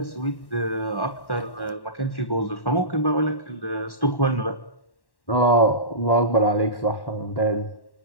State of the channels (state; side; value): late; right; 1.1 ms